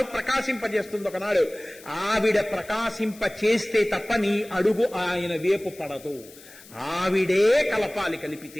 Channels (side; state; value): left; noise; hiss, 21 dB below the sound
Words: ప్రకాశింపజేస్తుంది. ఒకనాడు ఆవిడ ప్రకాశింప చేస్తే తప్ప నీ అడుగు ఆయన వేపు పడదు. ఆవిడే కలపాలి,